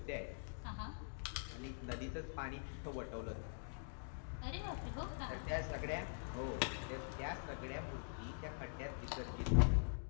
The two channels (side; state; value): right; silent; digital silence